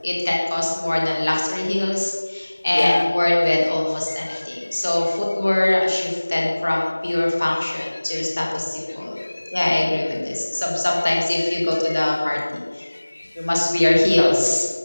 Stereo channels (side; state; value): both; inverted; correlation -1.00